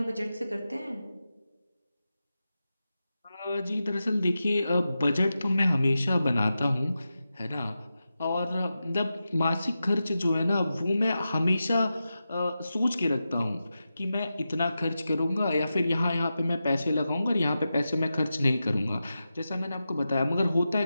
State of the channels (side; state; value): both; inverted; correlation -0.91